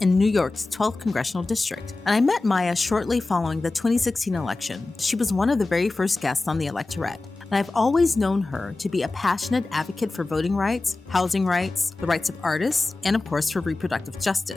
New York's 12th Congressional District, and I met Maya shortly following the 2016 election. She was one of the very first guests on the Electorette, and I've always known her to be a passionate advocate for voting rights, housing rights, the rights of artists, and of course for reproductive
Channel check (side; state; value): right; quieter; 3.3 dB